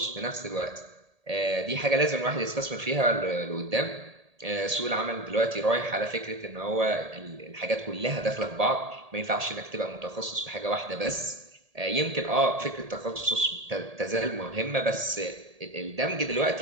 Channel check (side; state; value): left; late; 1.8 ms